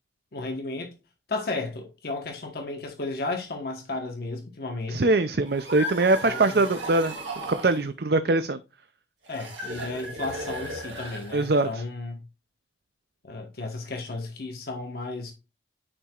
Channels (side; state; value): both; normal; correlation 0.11